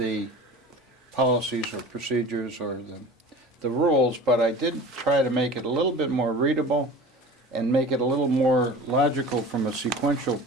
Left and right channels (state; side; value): normal; both; correlation 0.38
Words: policies or procedures or the rules, but I did try to make it a little bit more readable and make it a little more logical from a sequential